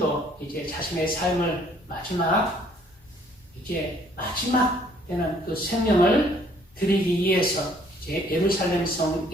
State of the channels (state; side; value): normal; both; correlation 0.61